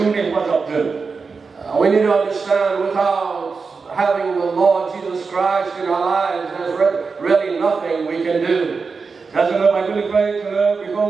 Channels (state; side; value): quieter; left; 4.8 dB